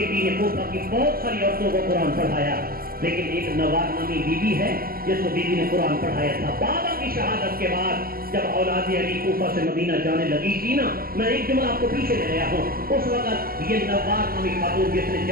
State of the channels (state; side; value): late; left; 0.43 ms